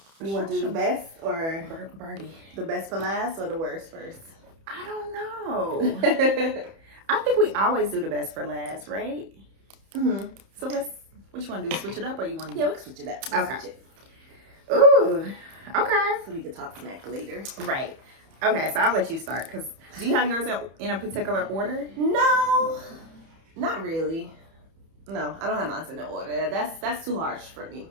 You want to do the best or Birdie? The best for last or the worst first? I don't know. I think we always do the best for last, right? Mm-hmm. So what you want to do? Switch it up or you want to? Yeah, we can switch it up. Okay. Switch it. Ooh, okay. So we can talk smack later. Right. Okay, so I'll let you start because do you have yours in a particular order? No, not really. No, I don't have mine in the order. That's too harsh for me.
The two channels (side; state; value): left; late; 31 ms